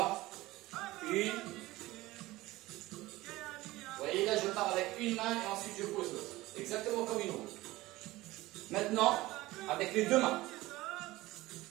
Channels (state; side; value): quieter; left; 18.4 dB